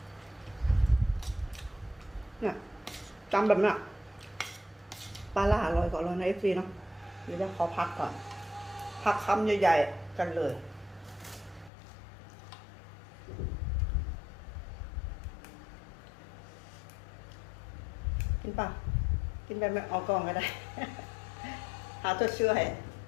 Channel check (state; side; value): drops out; right; at 11.7 s